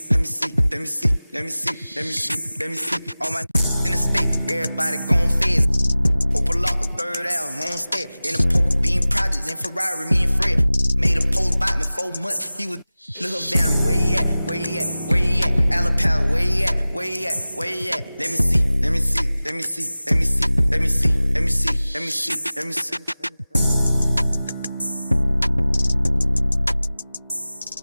let me see, let me see, let me see, let me see, let me see, all my in the state, everybody gon' fizz. Open lock a third out, homestead. In the poker bean projects in Ferrari, me and Fred. Made a post by me 4 months. He was little Van, where he at? Where he at? Where he at? Alapata, where he at? Where he at? Where he at? Let me see, let me see, let me see, let me see, let me see, let me see, let me see, let me see.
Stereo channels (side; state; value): both; inverted; correlation -0.97